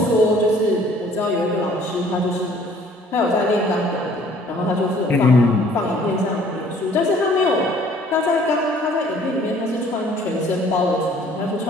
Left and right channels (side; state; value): both; normal; correlation 0.56